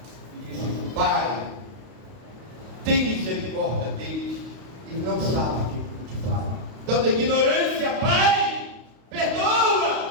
e disse: Pai, tem misericórdia deles, e não sabem o que te fazem. Então, da ignorância, Pai,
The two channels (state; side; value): late; left; 32 ms